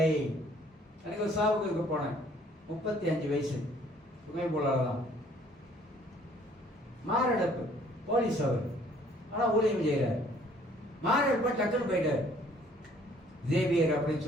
எனக்கு ஒரு சாவுக்கு போனேன், 35 வயசு, சுமை போலாதான், மாரடைப்பு, போலீஸ் அவர், ஆனா ஊழியம் செய்யறாரு. மாரடைப்பு டக்குன்னு போயிட்டாரு. ஜேவியர் அப்படின்னு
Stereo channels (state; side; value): normal; both; correlation 0.59